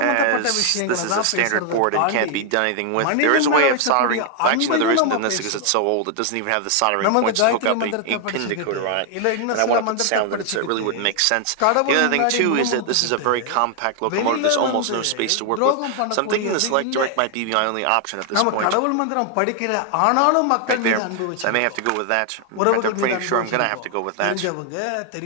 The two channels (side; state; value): both; different; correlation 0.00